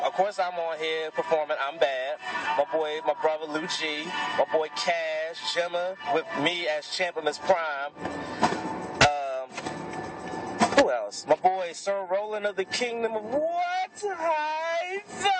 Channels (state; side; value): identical; both; correlation 1.00